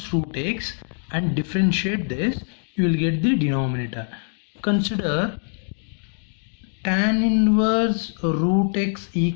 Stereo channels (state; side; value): silent; right; 63 dB below the other